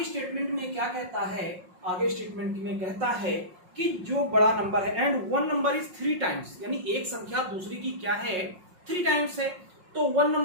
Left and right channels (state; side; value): late; left; 5.5 ms